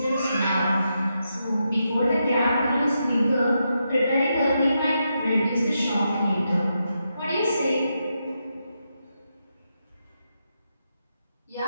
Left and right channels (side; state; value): both; inverted; correlation -0.84